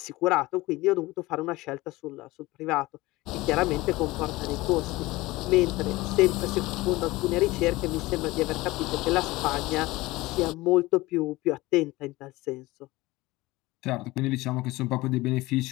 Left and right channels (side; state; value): right; quieter; 19.9 dB